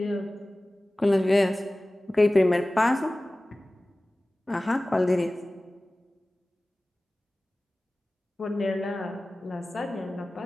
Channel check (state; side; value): normal; both; correlation 0.97